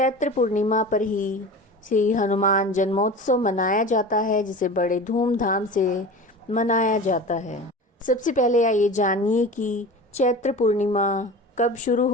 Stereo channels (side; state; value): both; normal; correlation 0.34